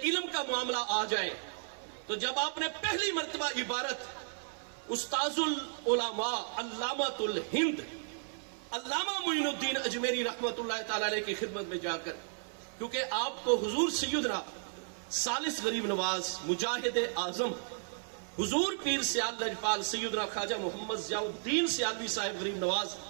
علم کا معاملہ آ جائے تو جب آپ نے پہلی مرتبہ عبارت استاذ العلماء علامۃ الہند علامہ معین الدین اجمیری رحمت اللہ تعالی علیہ کی خدمت میں جا کر، کیونکہ آپ کو حضور سیدنا ثالث غریب نواز مجاہد اعظم حضور پیر سیال لجپال سیدنا خواجہ محمد ضیاء الدین سیالوی صاحب غریب نواز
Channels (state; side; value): silent; left; 55 dB below the other